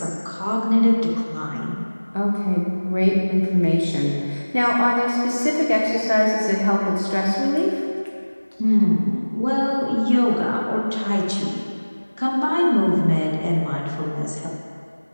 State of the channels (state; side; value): inverted; both; correlation -1.00